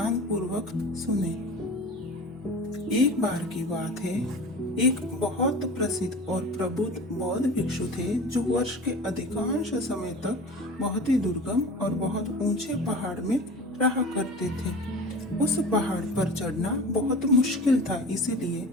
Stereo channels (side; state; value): both; normal; correlation 0.36